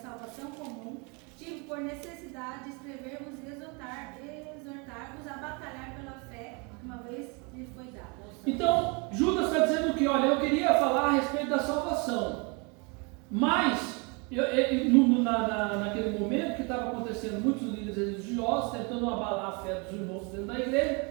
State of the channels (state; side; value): quieter; left; 31.3 dB